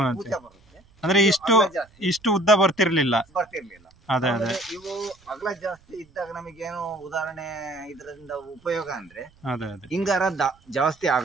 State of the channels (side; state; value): right; noise; rumble, 29 dB below the sound